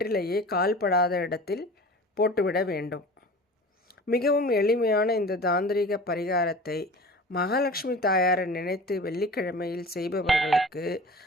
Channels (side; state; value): both; normal; correlation 0.39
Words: கால்படாத இடத்தில் போட்டுவிட வேண்டும். மிகவும் எளிமையான இந்த தாந்திரிக பரிகாரத்தை மகாலட்சுமி தாயாரை நினைத்து வெள்ளிக்கிழமையில் செய்பவர்களுக்கு